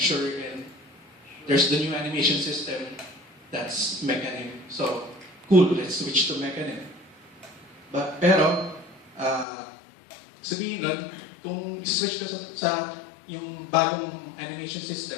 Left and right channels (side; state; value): right; drops out; at 9.5 s